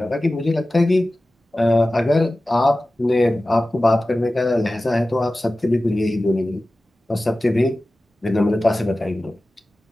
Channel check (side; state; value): both; normal; correlation 0.96